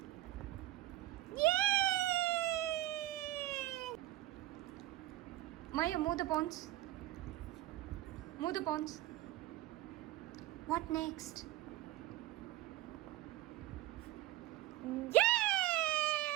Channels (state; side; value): quieter; left; 16.1 dB